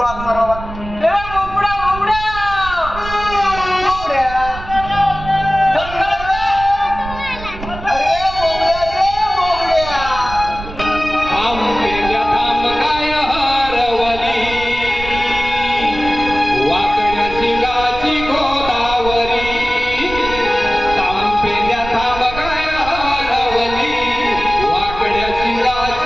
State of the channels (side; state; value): right; noise; rumble, 11 dB below the sound